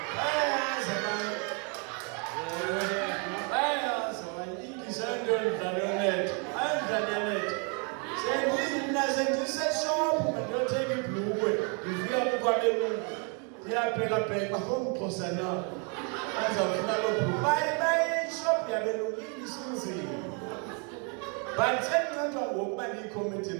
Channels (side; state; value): left; quieter; 36.3 dB